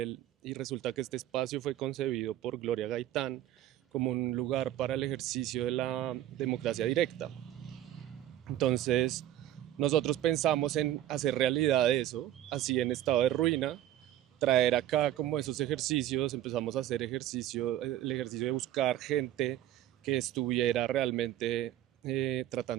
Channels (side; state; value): left; quieter; 12.8 dB